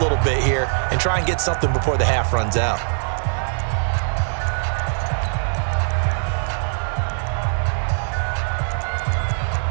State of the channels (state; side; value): silent; left; digital silence